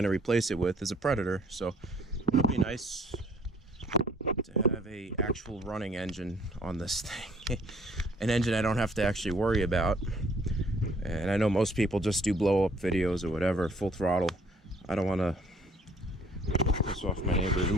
to replace it with is a Predator, so it'll be nice to have a actual running engine on this thing. An engine I don't have to actually worry about. And I know most people just do blow up videos or whatever, full throttle. I don't want to piss off my neighbors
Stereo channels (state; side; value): normal; both; correlation 0.59